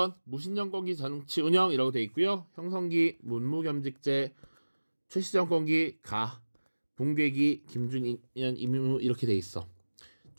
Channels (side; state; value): both; inverted; correlation -1.00